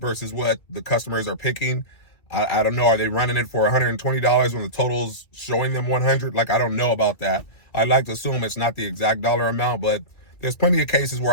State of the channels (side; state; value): right; late; 2.3 ms